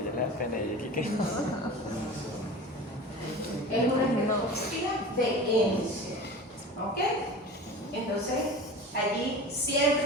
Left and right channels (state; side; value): normal; both; correlation 0.35